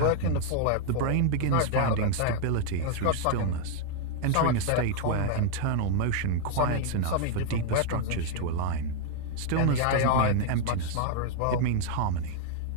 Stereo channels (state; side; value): different; both; correlation 0.00